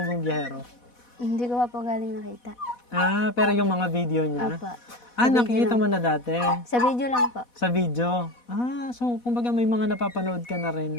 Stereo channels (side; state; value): right; late; 4.1 ms